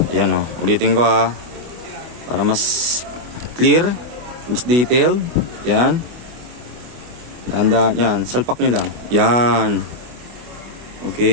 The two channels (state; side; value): late; left; 24 ms